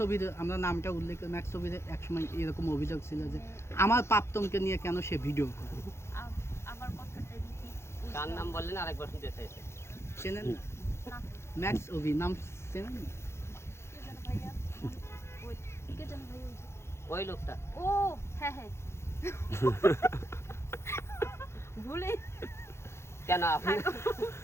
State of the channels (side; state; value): right; late; 0.13 ms